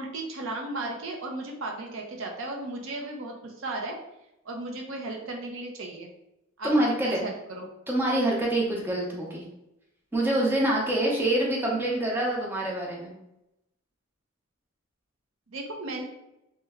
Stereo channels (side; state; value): both; normal; correlation 0.48